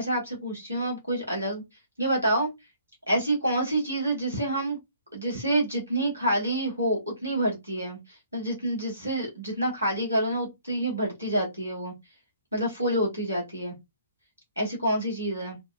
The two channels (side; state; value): both; inverted; correlation -0.61